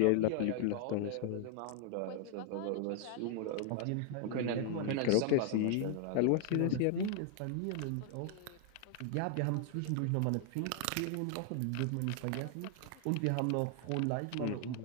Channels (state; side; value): different; both; correlation 0.00